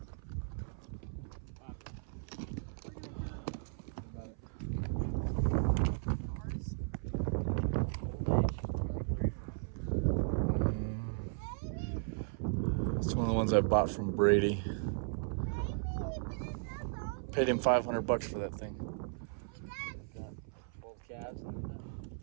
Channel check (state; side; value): silent; left; 54 dB below the other